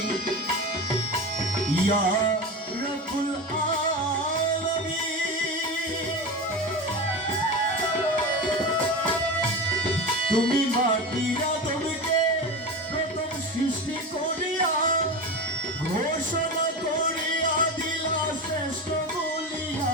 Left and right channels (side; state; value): both; normal; correlation 0.25